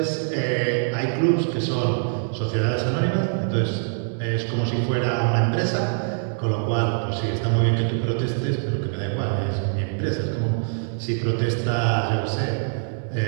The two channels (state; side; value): silent; left; digital silence